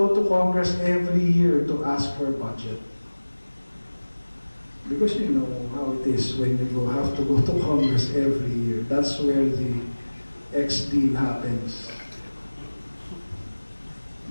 to Congress every year to ask for a budget. Because you know how it is when you have to go to Congress every year. That's where the X deal happens.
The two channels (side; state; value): both; inverted; correlation -1.00